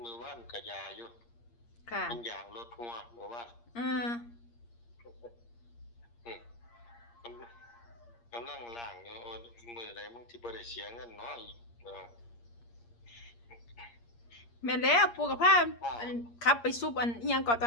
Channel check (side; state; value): right; late; 8.6 ms